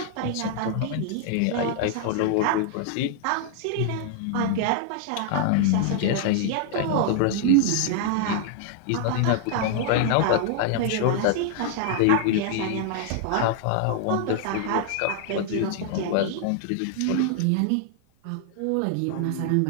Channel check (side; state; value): both; different; correlation 0.00